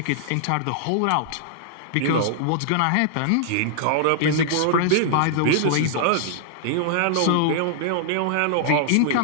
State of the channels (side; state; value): both; different; correlation -0.01